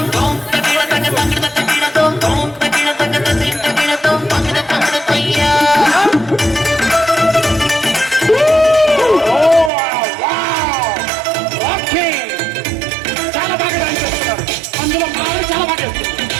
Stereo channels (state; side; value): drops out; left; at 9.7 s